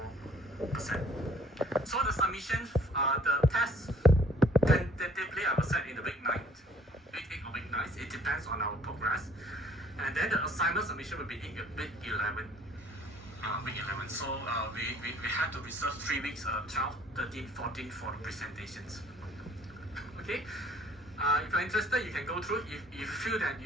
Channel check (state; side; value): normal; both; correlation 0.57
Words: So the submissions, the test tentatively I will set in the week 8 or week 9. It depends on our progress. And then the assignment submission will be in week 11. So we have to reserve 3 weeks, 12, 13, 14 for the presentations. Okay. If you're interested, you can go through. If you feel that